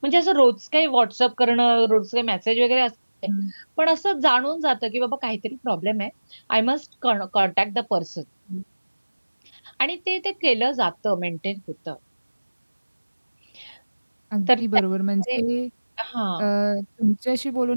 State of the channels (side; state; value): both; inverted; correlation -1.00